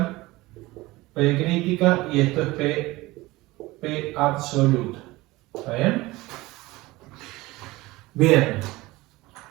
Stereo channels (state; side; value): quieter; left; 20.1 dB